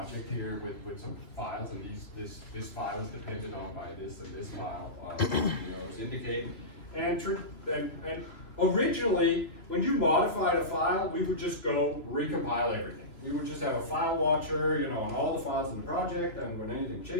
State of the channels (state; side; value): late; right; 2.7 ms